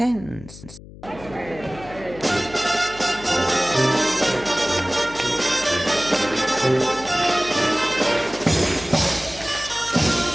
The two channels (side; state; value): left; noise; hum, 17 dB below the sound